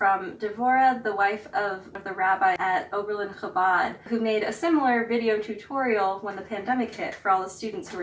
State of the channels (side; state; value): both; identical; correlation 1.00